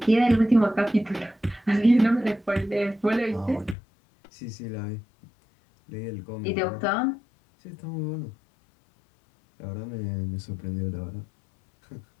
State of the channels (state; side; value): drops out; right; at 3.8 s